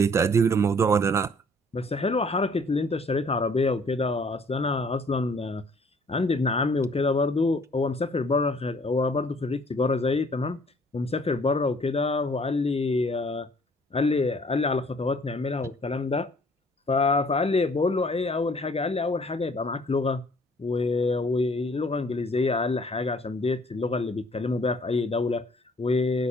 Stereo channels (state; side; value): normal; both; correlation 0.58